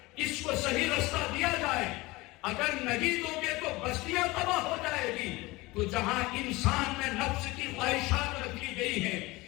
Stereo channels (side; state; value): right; quieter; 21.8 dB